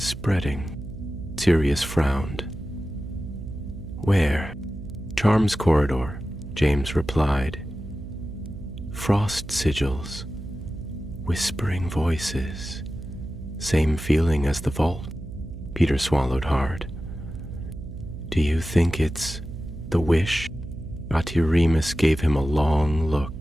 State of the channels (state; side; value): noise; right; hum, 11 dB below the sound